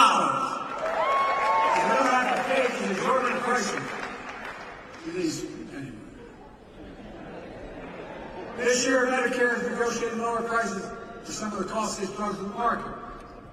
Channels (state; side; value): identical; both; correlation 1.00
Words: have to pay these exorbitant prices. Anyway. This year, Medicare is negotiating lower prices for some of the costliest drugs in the market.